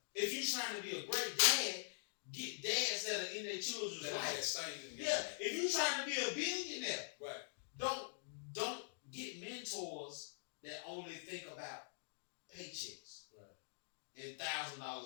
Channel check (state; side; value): silent; right; digital silence